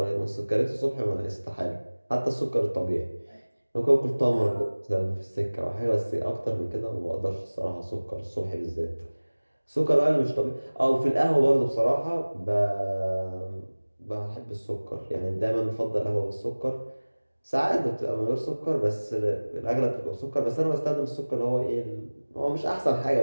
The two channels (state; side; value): inverted; both; correlation -1.00